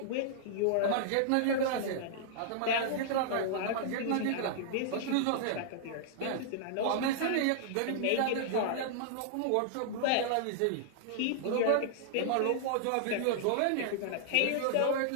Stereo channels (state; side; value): different; both; correlation -0.01